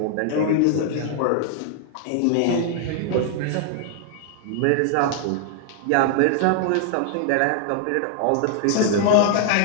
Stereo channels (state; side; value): different; both; correlation 0.00